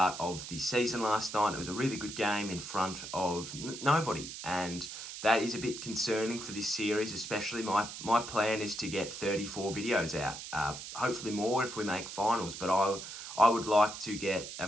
of the season last night. It was a really good game in front of nobody, and that is a bit concerning for this series, especially my plan is to get 34 videos out, hopefully more if we make finals, but I would like to get a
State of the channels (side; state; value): right; noise; hiss, 10 dB below the sound